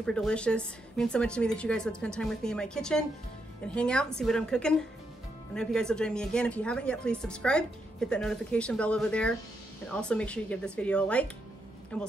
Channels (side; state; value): both; normal; correlation 0.80